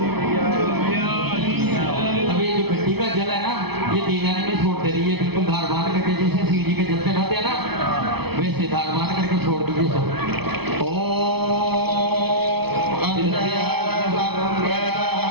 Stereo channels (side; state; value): left; late; 0.98 ms